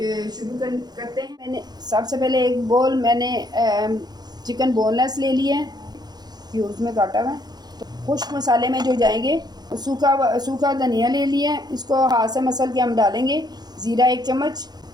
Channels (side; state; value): left; late; 0.20 ms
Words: शुरू करते हैं। मैंने सबसे पहले एक बोल मैंने चिकन बोनलेस ले लिया है, क्यूब्स में काटा हुआ है। तो खुश्क मसाले में जो जाएंगे, सूखा धनिया ले लिया है, इसको हाथ से मसल के हम डालेंगे। ज़ीरा 1 चम्मच,